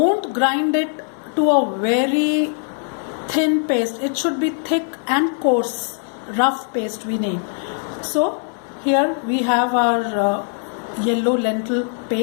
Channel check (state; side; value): silent; right; 56 dB below the other